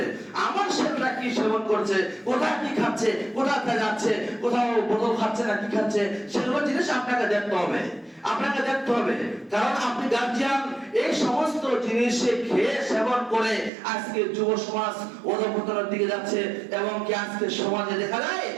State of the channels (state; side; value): drops out; left; at 13.7 s